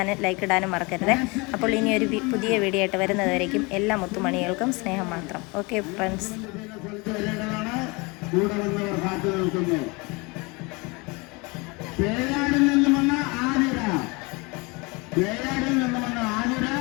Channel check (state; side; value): quieter; right; 27.2 dB